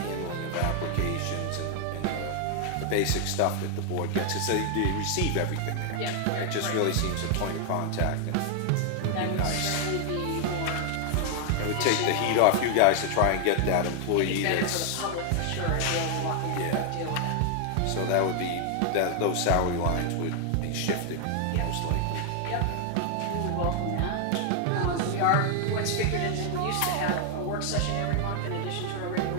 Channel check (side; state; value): both; different; correlation 0.00